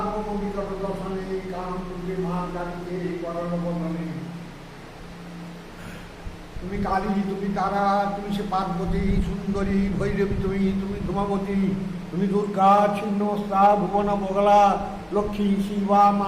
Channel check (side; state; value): both; identical; correlation 1.00